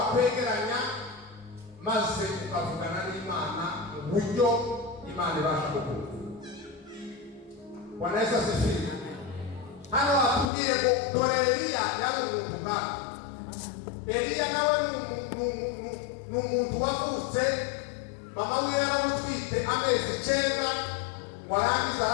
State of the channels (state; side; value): drops out; right; at 10.5 s